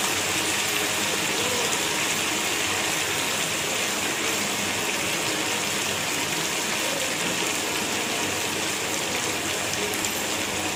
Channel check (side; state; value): both; identical; correlation 1.00